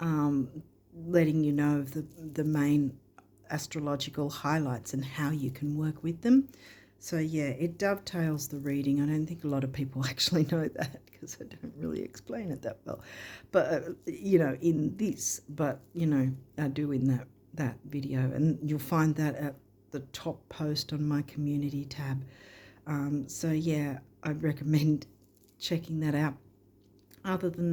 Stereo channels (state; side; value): identical; both; correlation 1.00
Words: letting you know of the main astrological highlights and how you can work with them. So yeah, it dovetails the reading. I don't think a lot of people actually know that because I don't really explain it that well, but in this, but I do in that video, and you'll find that at the top post on my community tab. So yeah, I'd recommend checking that out. Other